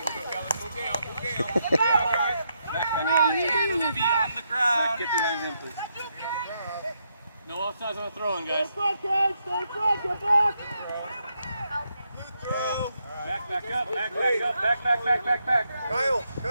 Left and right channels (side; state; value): both; inverted; correlation -0.80